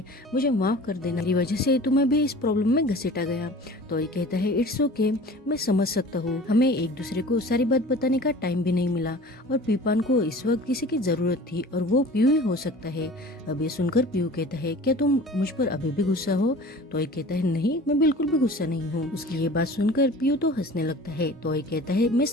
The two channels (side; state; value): both; normal; correlation 0.42